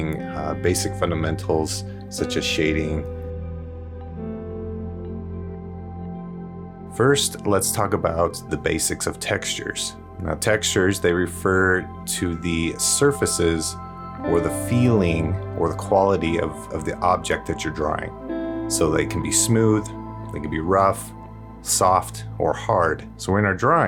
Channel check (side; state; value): both; identical; correlation 1.00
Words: basic fundamentals such as shading. First, let's talk about the basics of textures. Now, textures, they refer to the surfaces or the feeling or the quality of the object that you're drawing. So they can be smooth, they can be rough, soft, or hard. So in our